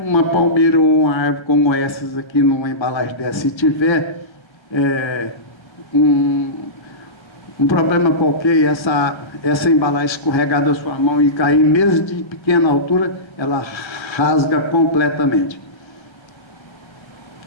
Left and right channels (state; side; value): late; right; 1.4 ms